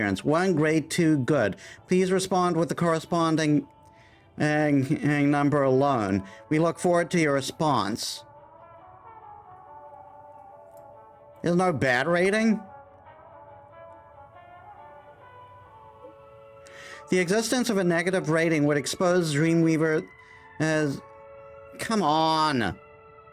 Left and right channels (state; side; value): identical; both; correlation 1.00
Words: 1 great, 2 good. Please respond with the corresponding number alone. We look forward to your response. There's no bad rating? The existence of a negative rating would expose Dreamweaver as... Come on!